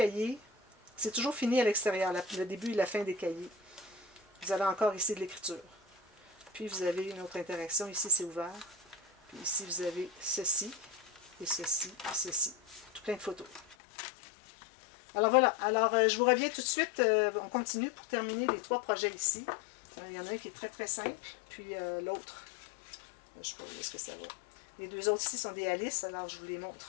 C'est toujours fini à l'extérieur, le début et la fin des cahiers. Vous avez encore ici de l'écriture. Puis vous avez une autre interaction. Ici, c'est ouvert. Puis ici, vous avez ceci, et ceci, et ceci. Tout plein de photos. Alors voilà. Alors, je vous reviens tout de suite. On continue pour terminer les 3 projets ici. Il y en a un qui est très, très simple. Puis l'autre, je ne sais pas où est-ce que ça va. Les 2 autres ici sont des Alice, alors je vous les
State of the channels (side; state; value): right; drops out; at 13.8 s